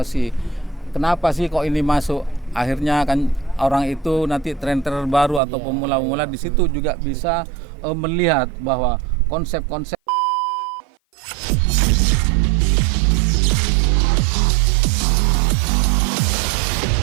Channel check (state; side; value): drops out; left; at 5.4 s